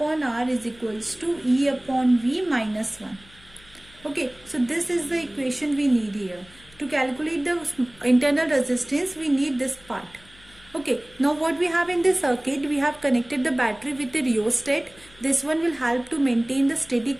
R is equals to E upon V minus 1. Okay, so this is the equation we need here. To calculate the internal resistance, we need this part. Okay, now what we have in this circuit, we have connected the battery with the rheostat. This one will help to maintain the steady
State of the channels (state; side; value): noise; left; hum, 25 dB below the sound